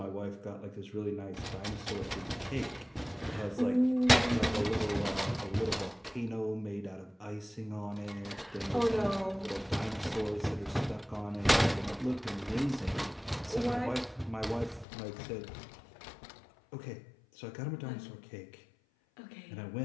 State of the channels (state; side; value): drops out; right; at 14.9 s